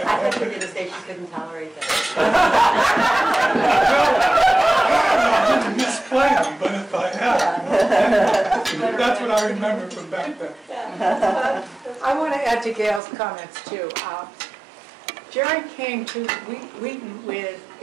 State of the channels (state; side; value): drops out; left; at 13.0 s